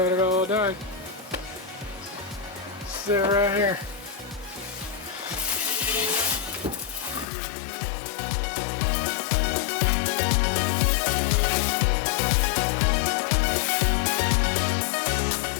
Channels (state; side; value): drops out; right; at 7.2 s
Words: it all done. Sit right here.